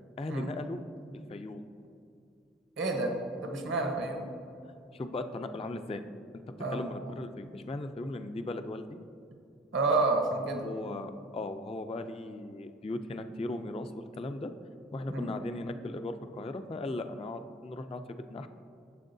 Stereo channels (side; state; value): both; normal; correlation 0.42